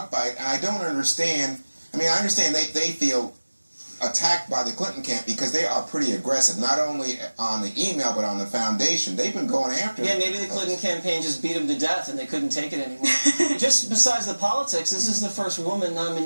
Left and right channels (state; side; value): inverted; both; correlation -1.00